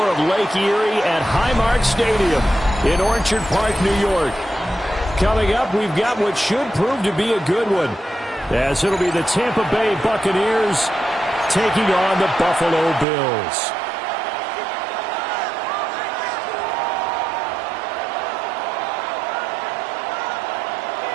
of Lake Erie at Highmark Stadium in Orchard Park, New York. Coming up, we've got what should prove to be a good one, as it'll be the Tampa Bay Buccaneers taking on the Buffalo Bills.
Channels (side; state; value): left; drops out; at 13.1 s